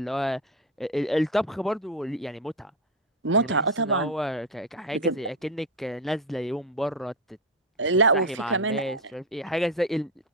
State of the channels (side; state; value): both; normal; correlation 0.12